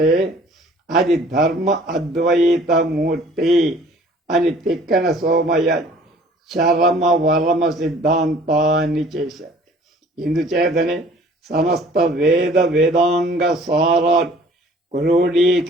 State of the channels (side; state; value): both; normal; correlation 0.52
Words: అది ధర్మ అద్వైతమూర్తి అని తిక్కన సోమయ్య చరమ వరమ సిద్ధాంతాన్ని చేశారు. ఇందుచేతనే సమస్త వేదాంగ సారాలు